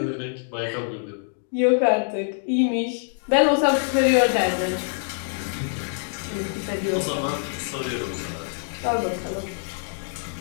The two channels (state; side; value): silent; right; digital silence